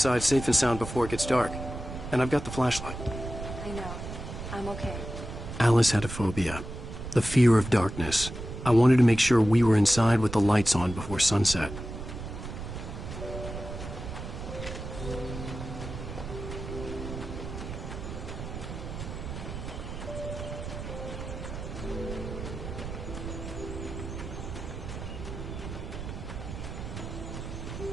safe and sound before it gets dark. And I've got the flashlight. I know. I'm okay. Alice had a phobia. The fear of darkness. I wanted to make sure we were inside with the lights on before sunset.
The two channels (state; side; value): noise; right; rumble, 8 dB below the sound